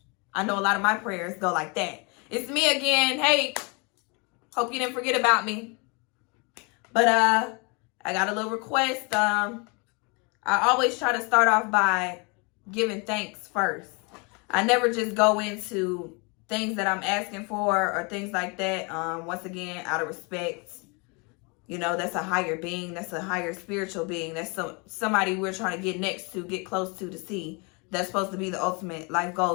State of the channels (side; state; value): right; quieter; 31.4 dB